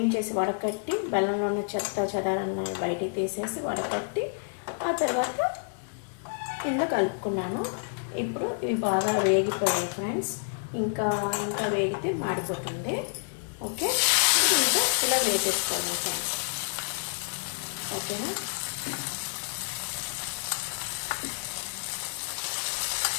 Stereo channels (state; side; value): silent; right; digital silence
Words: చేసి వడకట్టి బెల్లంలో ఉన్న చెత్త చెదారాన్ని బయటికి తీసేసి వడకట్టి ఆ తర్వాత ఇందులో కలుపుకున్నాను. ఇప్పుడు ఇవి బాగా వేగిపోయాయి ఫ్రెండ్స్. ఇంకా వేగితే మాడిపోతుంది. ఓకే, ఇంకా ఇలా వేసేసుకోండి ఫ్రెండ్స్. ఓకేనా?